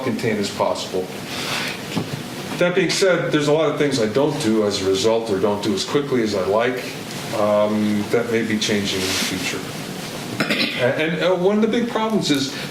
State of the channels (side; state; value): both; identical; correlation 1.00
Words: as possible. That being said, there's a lot of things I don't do as a result or don't do as quickly as I like. That may be changing in the future. And one of the big problems is